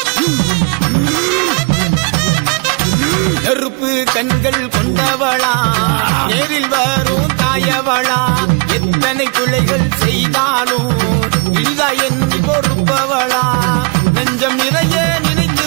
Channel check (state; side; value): quieter; left; 32.4 dB